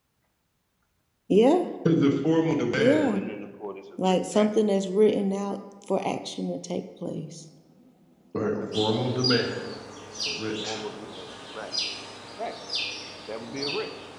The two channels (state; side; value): identical; both; correlation 1.00